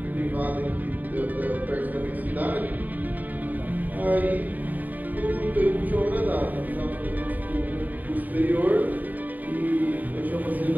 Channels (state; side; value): late; left; 0.083 ms